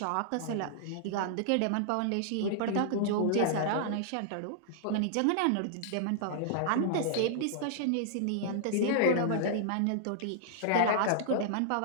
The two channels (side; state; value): both; different; correlation -0.01